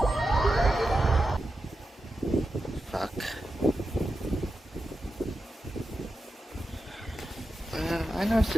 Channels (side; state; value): both; normal; correlation 0.90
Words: Fuck. I know it's